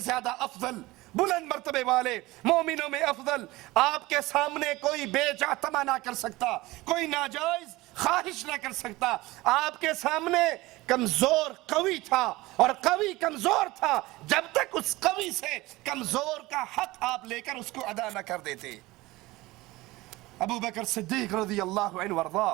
افضل بلند مرتبے والے مومنوں میں افضل. آپ کے سامنے کوئی بے جا تما نہ کر سکتا, کوئی ناجائز خواہش نہ کر سکتا. آپ کے سامنے کمزور قوی تھا اور قوی کمزور تھا جب تک اس قوی سے کمزور کا حق آپ لے کر اس کو ادا نہ کر دیتے. ابو بکر صدیق رضی اللہ عنہ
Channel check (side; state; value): left; quieter; 19.9 dB